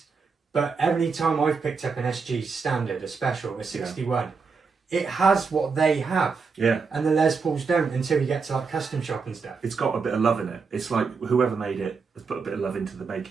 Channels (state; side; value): quieter; left; 5.0 dB